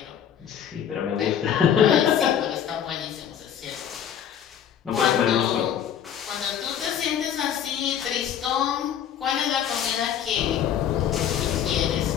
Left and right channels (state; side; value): quieter; right; 9.3 dB